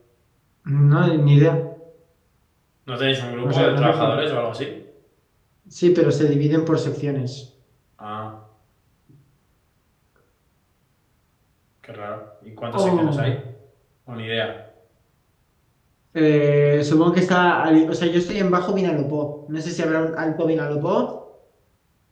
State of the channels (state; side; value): identical; both; correlation 1.00